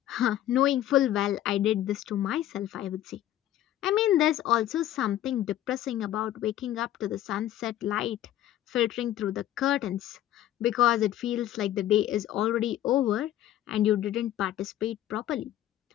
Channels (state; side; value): quieter; right; 12.8 dB